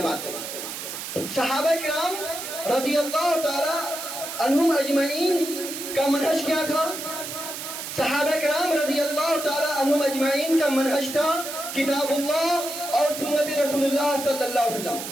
ہے. صحابہ کرام رضی اللہ تعالی عنہم اجمعین کا منہج کیا تھا؟ صحابہ کرام رضی اللہ تعالی عنہم اجمعین کا منہج تھا کتاب اللہ اور سنت رسول اللہ صلی اللہ علیہ وسلم،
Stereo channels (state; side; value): noise; right; hiss, 7 dB below the sound